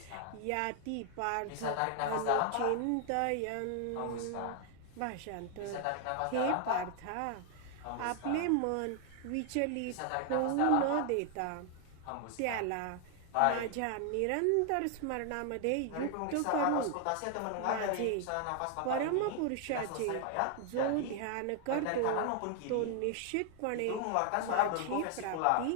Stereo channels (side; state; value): both; different; correlation 0.00